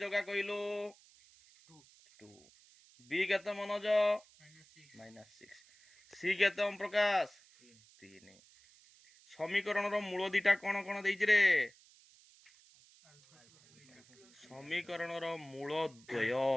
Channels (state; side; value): noise; right; hiss, 26 dB below the sound